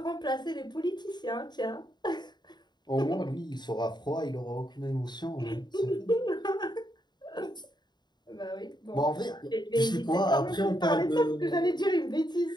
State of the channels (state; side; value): late; right; 0.21 ms